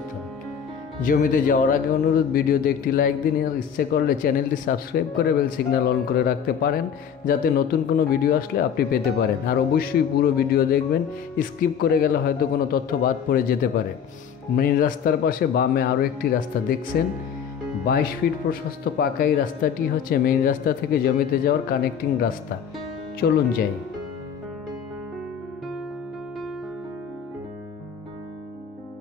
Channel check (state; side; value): quieter; right; 7.7 dB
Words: জমিতে যাওয়ার আগে অনুরোধ, ভিডিওতে একটি লাইক দিন, আর ইচ্ছে করলে চ্যানেলটি সাবস্ক্রাইব করে বেল সিগন্যাল অন করে রাখতে পারেন, যাতে নতুন কোনো ভিডিও আসলে আপনি পেতে পারেন। আর অবশ্যই পুরো ভিডিও দেখবেন, স্কিপ করে গেলে হয়তো কোনো তথ্য বাদ পড়ে যেতে পারে। মেইন রাস্তার পাশে বামে আরও একটি রাস্তা দেখছেন, 22 ফিট প্রশস্ত পাকা। এই রাস্তাটি হচ্ছে মেইন রাস্তা থেকে জমিতে যাওয়ার কানেক্টিং রাস্তা। চলুন যাই।